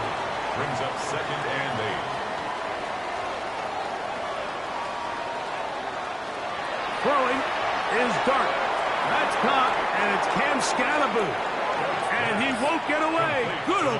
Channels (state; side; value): identical; both; correlation 1.00